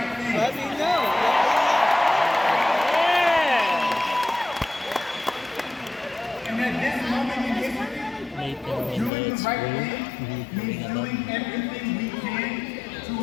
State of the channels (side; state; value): right; drops out; at 9.1 s